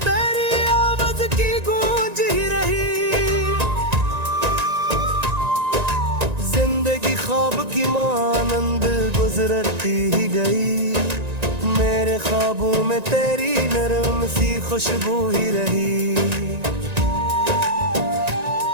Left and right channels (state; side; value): late; left; 1.9 ms